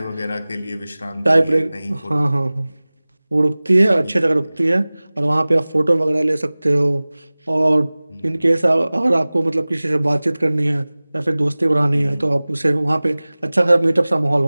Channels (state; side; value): inverted; both; correlation -0.99